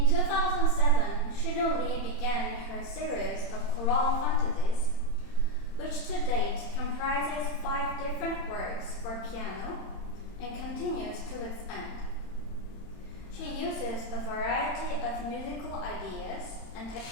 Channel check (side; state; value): right; late; 31 ms